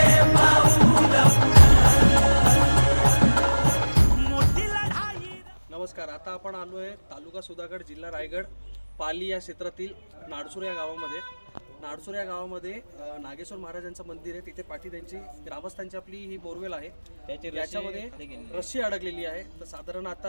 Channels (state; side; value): inverted; both; correlation -1.00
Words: पाऊल मोठी लढाई. नमस्कार. आता आपण आलो आहे तालुका सुधागड, जिल्हा रायगड, पाली या क्षेत्रातील नाडसूर या गावामध्ये. नाडसूर या गावामध्ये नागेश्वर महाराजांचं मंदिर आहे. तिथे पाठी त्यांची ग्रामस्थांची आपली ही बोरवेल आहे. याच्यामध्ये रस्सी अडकलेली आहे. तर साधारण